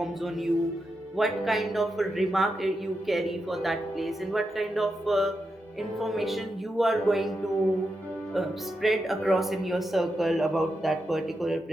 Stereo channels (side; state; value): both; normal; correlation 0.87